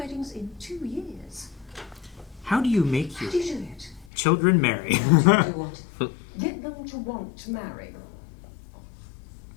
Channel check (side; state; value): right; drops out; at 4.1 s